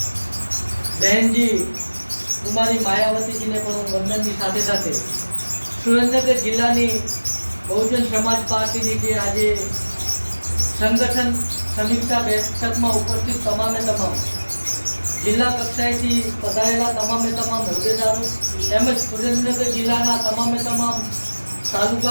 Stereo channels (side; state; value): both; inverted; correlation -1.00